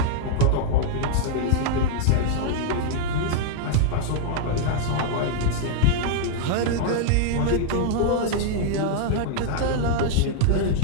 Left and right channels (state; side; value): different; both; correlation -0.01